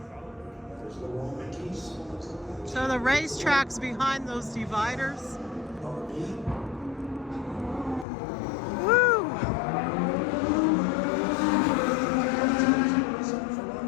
So the racetrack's behind those dividers. Woo!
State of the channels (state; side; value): drops out; right; at 8.1 s